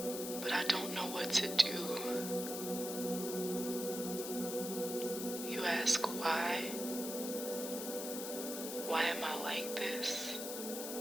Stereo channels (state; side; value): noise; left; hiss, 6 dB below the sound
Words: but I don't know what to do. You ask why? Why am I like this?